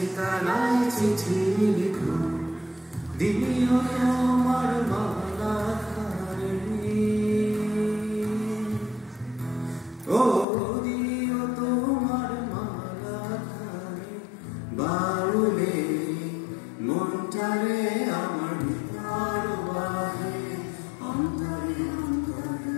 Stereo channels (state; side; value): drops out; right; at 10.5 s